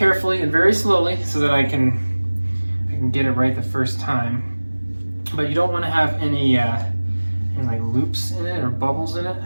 and very slowly so that I can get it right the first time. But you don't want to have any like loops in it or bubbles in it.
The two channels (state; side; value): inverted; both; correlation -1.00